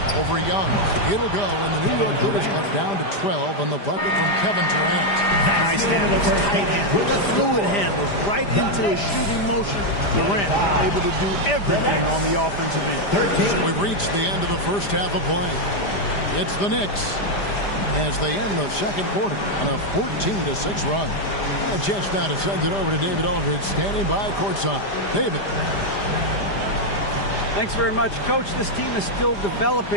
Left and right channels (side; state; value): right; late; 5.0 ms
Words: over Young. It'll go, and the New York Clippers cut down to 12 on the bucket from Kevin Durant. Nice handles, tight handles, fluid handles, right into a shooting motion. Durant able to do everything on the offensive end. We've reached the end of the first half of play. It's the Knicks as they end the second quarter on a 14-6 run. A chance now to send it over to David Aldridge, standing by courtside. David. Thanks very much, Coach. This team is still